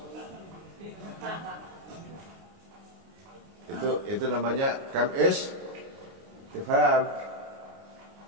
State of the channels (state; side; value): late; left; 29 ms